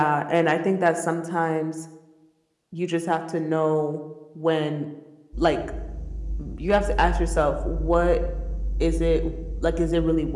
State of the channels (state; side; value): identical; both; correlation 1.00